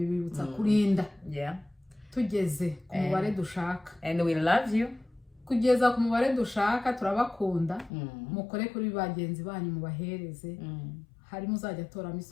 kurinda tugeze ku mubare dushaka, and we love you. Kugeza ku mubare dushaka turabakunda, mukore kuri bagenzi banyu mubahereze, hari muzajya toramo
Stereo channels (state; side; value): drops out; right; at 7.9 s